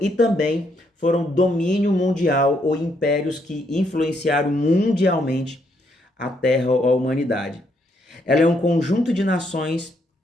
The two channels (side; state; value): both; normal; correlation 0.74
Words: também foram domínio mundial ou impérios que influenciaram mundialmente a terra ou a humanidade. Ela é um conjunto de nações,